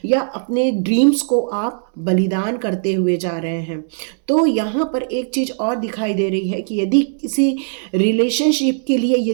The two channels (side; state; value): left; silent; digital silence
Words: या अपने ड्रीम्स को आप बलिदान करते हुए जा रहे हैं। तो यहाँ पर एक चीज़ और दिखाई दे रही है कि यदि किसी रिलेशनशिप के लिए